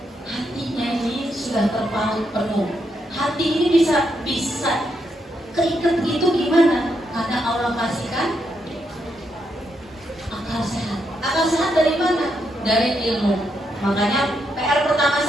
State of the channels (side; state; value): both; normal; correlation 0.80